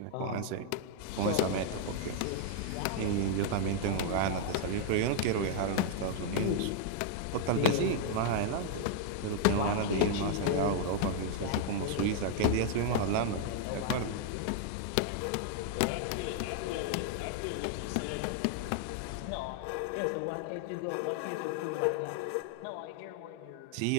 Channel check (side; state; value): both; different; correlation 0.00